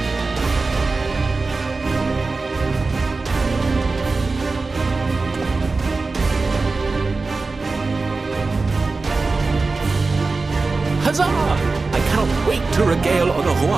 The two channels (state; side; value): quieter; left; 3.8 dB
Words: Huzzah! I cannot wait to regale